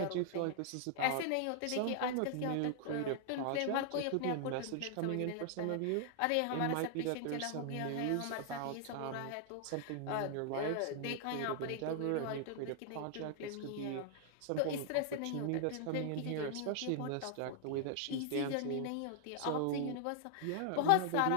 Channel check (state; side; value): different; both; correlation 0.00